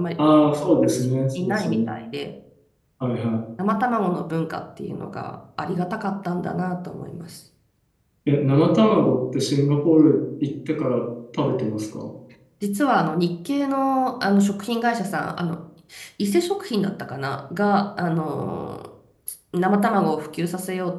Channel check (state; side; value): identical; both; correlation 1.00